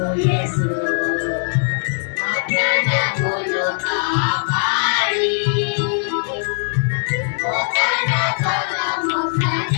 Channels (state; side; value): silent; right; digital silence